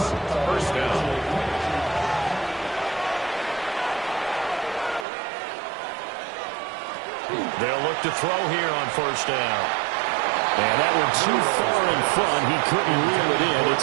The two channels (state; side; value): drops out; left; at 5.1 s